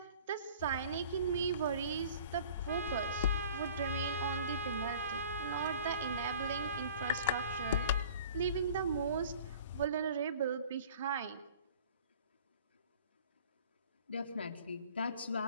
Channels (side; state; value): both; inverted; correlation -0.47